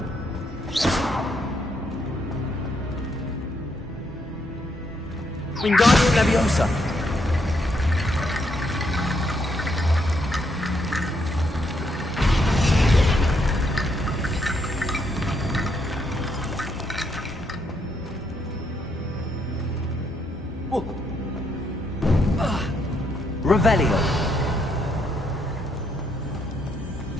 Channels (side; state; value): both; normal; correlation 0.75